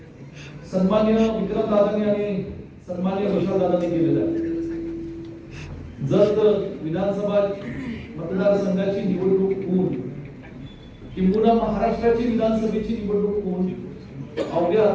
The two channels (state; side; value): identical; both; correlation 1.00